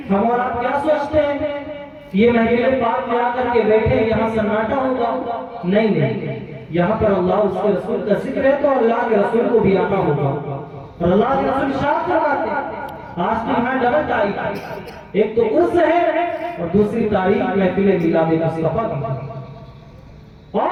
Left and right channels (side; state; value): both; identical; correlation 1.00